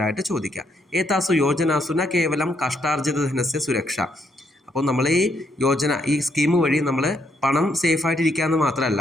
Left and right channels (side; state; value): both; normal; correlation 0.74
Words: ചോദിക്കുക. ഏതാസു യോജനാസു ന കേവലം കഷ്ടാർജിത ധനസ്യ സുരക്ഷ, അപ്പോൾ നമ്മൾ ഈ യോജന, ഈ സ്കീം വഴി നമ്മൾ പണം സേഫായിട്ടിരിക്കുക എന്ന്